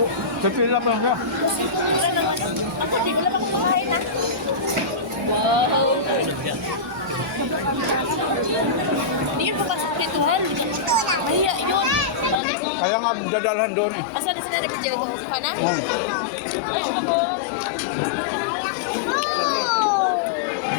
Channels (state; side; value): drops out; right; at 12.4 s